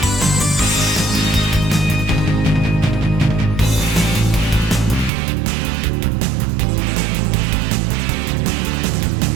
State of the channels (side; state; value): left; drops out; at 5.1 s